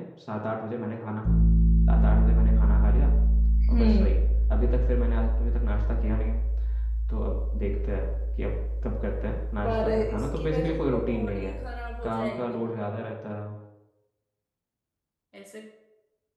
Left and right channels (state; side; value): identical; both; correlation 1.00